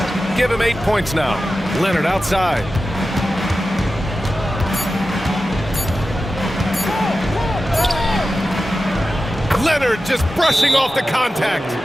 Give him 8 points now. Leonard outside. Leonard just brushing off the contact.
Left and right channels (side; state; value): both; normal; correlation 0.93